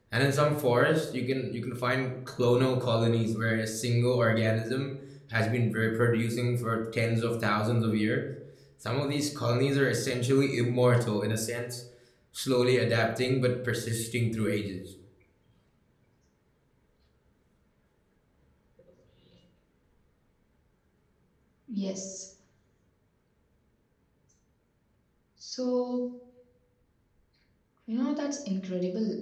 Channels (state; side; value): identical; both; correlation 1.00